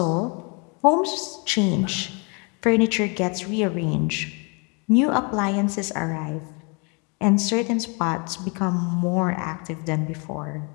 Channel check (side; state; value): right; quieter; 33.4 dB